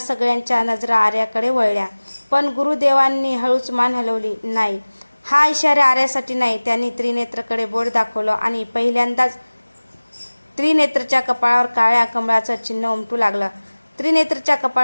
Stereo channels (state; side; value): inverted; both; correlation -1.00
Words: नजरा आर्याकडे वळल्या. पण गुरुदेवांनी हळूच मान हलवली. नाही, हा इशारा आर्यासाठी नाही. त्यांनी त्रिनेत्रकडे बोट दाखवलं आणि पहिल्यांदाच त्रिनेत्रच्या कपाळावर काळ्या कमळाचं चिन्ह उमटू लागलं. त्रिनेत्रच्या